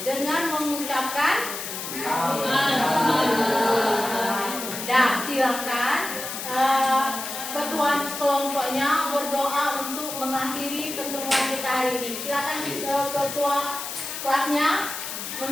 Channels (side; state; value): left; noise; hiss, 7 dB below the sound